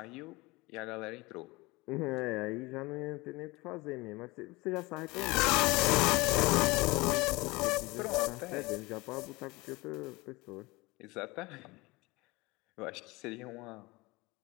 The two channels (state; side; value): quieter; right; 23.0 dB